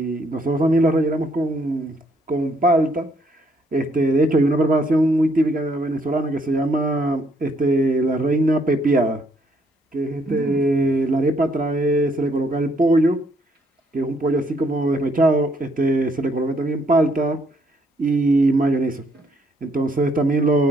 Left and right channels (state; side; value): normal; both; correlation 0.70